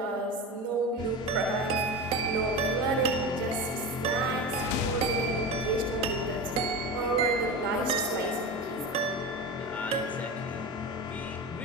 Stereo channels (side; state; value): both; normal; correlation 0.26